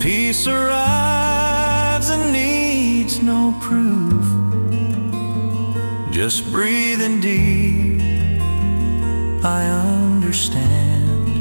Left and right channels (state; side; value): inverted; both; correlation -1.00